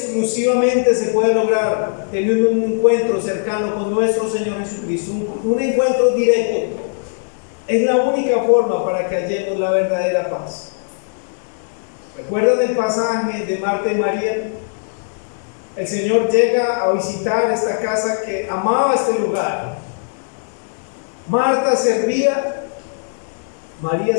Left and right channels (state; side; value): silent; right; digital silence